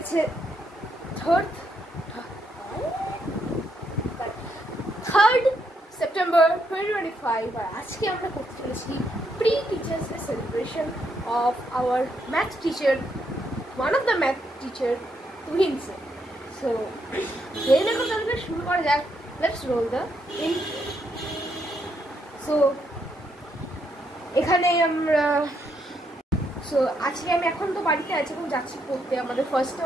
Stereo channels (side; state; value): both; normal; correlation 0.77